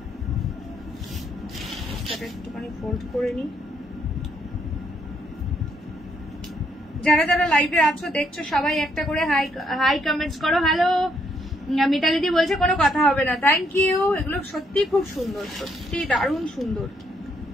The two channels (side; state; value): both; normal; correlation 0.73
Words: একটুখানি ফোল্ড করে নি। যারা যারা লাইভে আছো দেখছো সবাই একটা করে হাই হাই কমেন্টস করো। হ্যালো মিতালিদি বলছে কোনো কথা হবে না, থ্যাংক ইউ। এগুলো সত্যি খুব সুন্দর, সত্যি দারুণ সুন্দর,